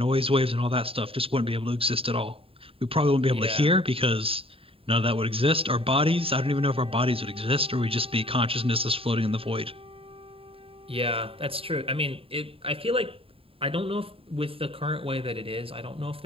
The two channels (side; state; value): left; late; 0.27 ms